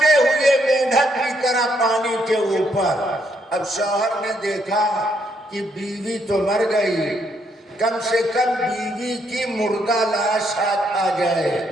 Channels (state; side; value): normal; both; correlation 0.73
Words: ہوئے مینڈک کی طرح پانی کے اوپر۔ اب شوہر نے دیکھا کہ بیوی تو مر گئی، کم سے کم بیوی کی مردہ لاش ہاتھ آ جائے۔